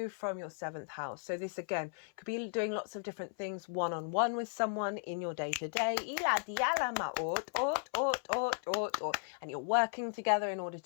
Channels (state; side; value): silent; right; 54 dB below the other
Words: from your 7th house. So this, again, could be doing lots of different things one-on-one with someone in your day-to-day. And you're working together in order